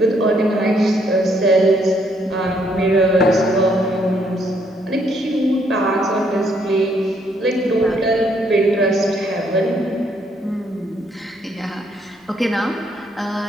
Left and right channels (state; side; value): normal; both; correlation 0.70